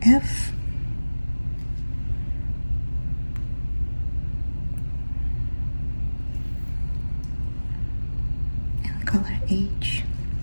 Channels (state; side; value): inverted; both; correlation -1.00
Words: F, and color H.